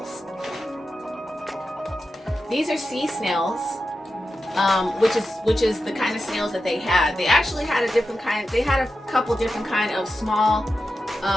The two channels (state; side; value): normal; both; correlation 0.90